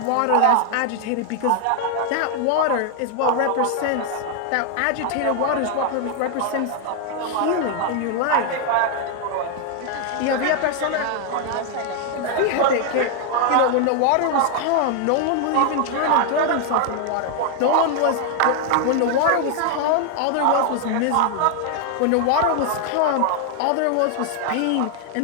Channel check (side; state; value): both; different; correlation 0.00